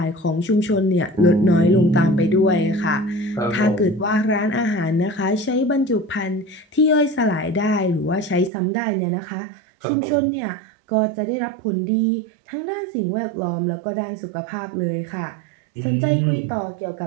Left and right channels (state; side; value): drops out; left; at 8.5 s